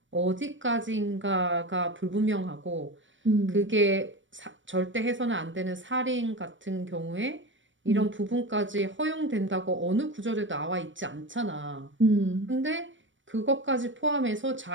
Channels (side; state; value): left; late; 0.56 ms